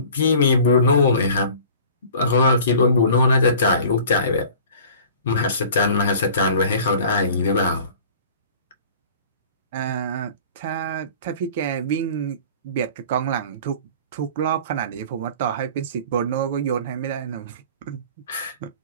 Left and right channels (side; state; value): both; inverted; correlation -0.45